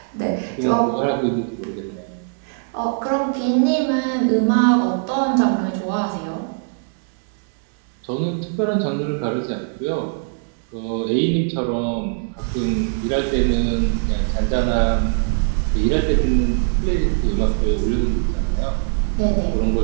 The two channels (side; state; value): left; silent; digital silence